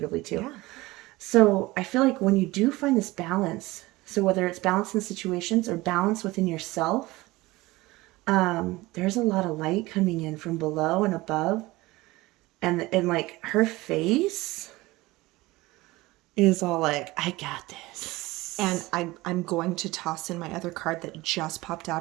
too. So I feel like when you do find this balance, so whether it's balance in situations or balance within yourself, there's a lot of light coming in from below and above. And like her face is all like, I got this. And I'm going to toss in my other card that just popped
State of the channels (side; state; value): left; quieter; 20.1 dB